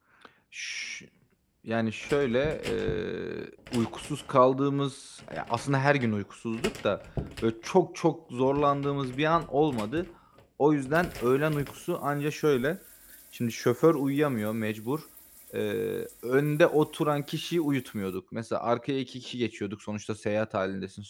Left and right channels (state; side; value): identical; both; correlation 1.00